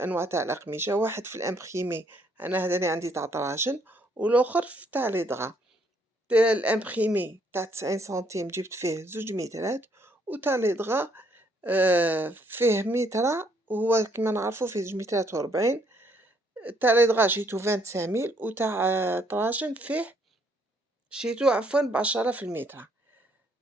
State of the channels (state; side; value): normal; both; correlation 0.69